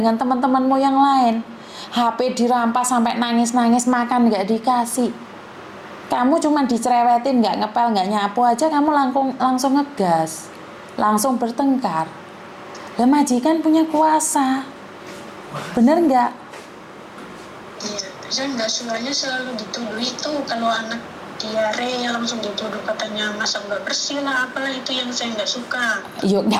teman-temanmu yang lain, HP dirampas sampai nangis-nangis, makan nggak dikasih. Kamu cuma dicerewetin, nggak ngepel, nggak nyapu aja, kamu langsung ngegas, langsung bertengkar. Lah majikan punya kuasa, bener nggak? Iya, saya nggak sukanya selalu dituduh itu, kalau anak diare langsung dituduh katanya masa nggak bersih lah, apalah itu yang saya nggak suka. Yo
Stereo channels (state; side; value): identical; both; correlation 1.00